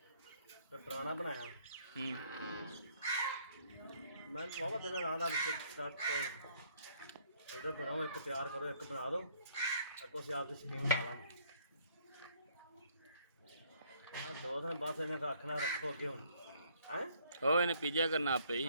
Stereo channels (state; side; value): inverted; both; correlation -0.63